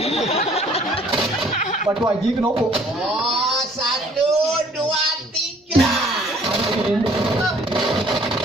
Batuk aja ke nopo. Oh, 1, 2, 3.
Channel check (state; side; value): normal; both; correlation 0.57